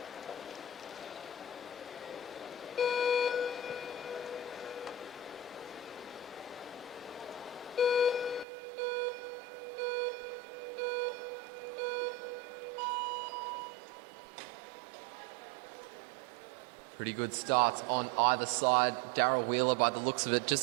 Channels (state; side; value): drops out; left; at 8.5 s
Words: Pretty good starts on either side. Darryl Wheeler, by the looks of it,